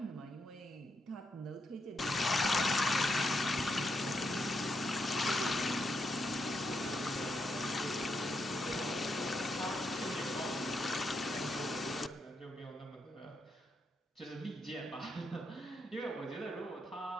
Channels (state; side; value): normal; both; correlation 0.81